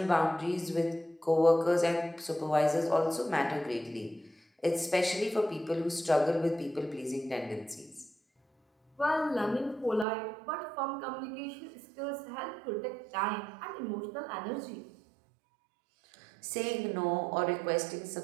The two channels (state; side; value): drops out; left; at 10.1 s